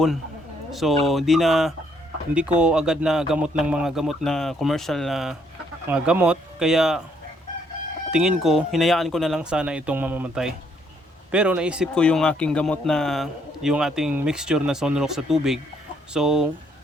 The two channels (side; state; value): both; normal; correlation 0.70